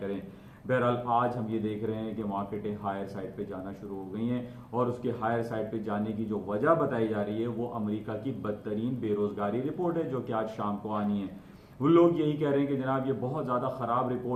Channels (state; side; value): identical; both; correlation 1.00